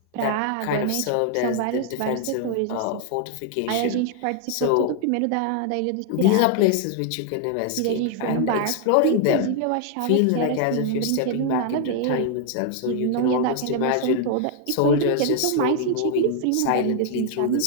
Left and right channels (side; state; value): both; different; correlation 0.00